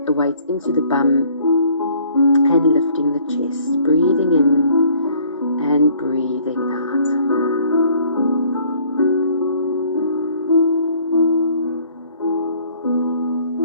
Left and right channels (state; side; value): inverted; both; correlation -0.58